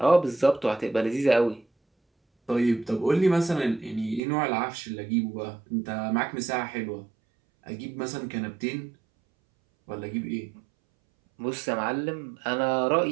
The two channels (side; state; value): left; drops out; at 4.2 s